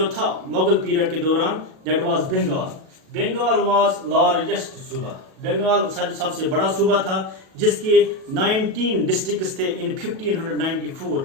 था मुगल पीरियड के दौरान, that was Bengal. Bengal was largest suba. Bengal सबसे बड़ा सूबा था, जिसके 19 डिस्ट्रिक्ट्स थे इन 1594.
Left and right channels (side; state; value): left; late; 37 ms